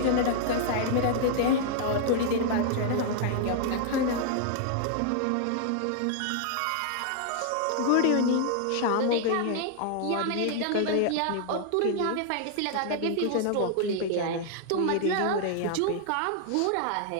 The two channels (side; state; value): both; different; correlation -0.01